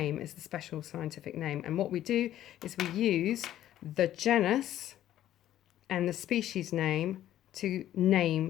is the special scientific name. And what we do is we use the genus and the species name to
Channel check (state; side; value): quieter; right; 12.5 dB